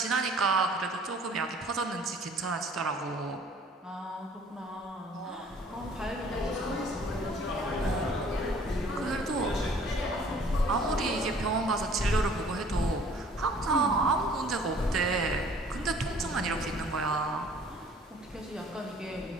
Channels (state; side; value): normal; both; correlation 0.54